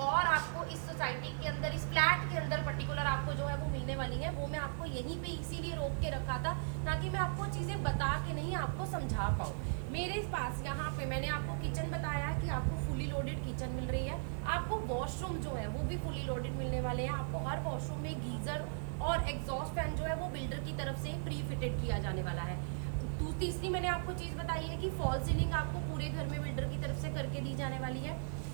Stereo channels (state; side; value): silent; left; 53 dB below the other